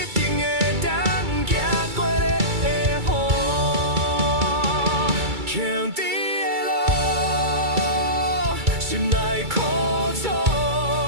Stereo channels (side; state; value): left; late; 2.3 ms